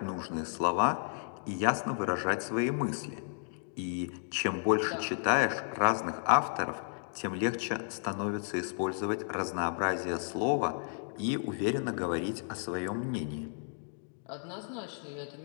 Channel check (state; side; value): silent; right; digital silence